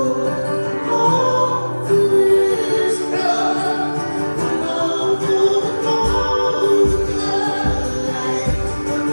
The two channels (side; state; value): both; inverted; correlation -1.00